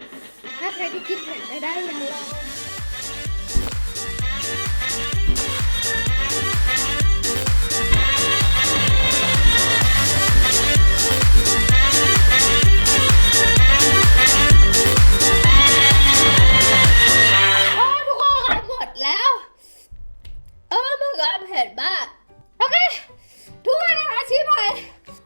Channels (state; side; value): inverted; both; correlation -1.00